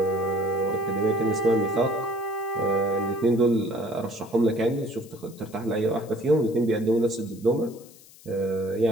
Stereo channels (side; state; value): left; noise; hiss, 23 dB below the sound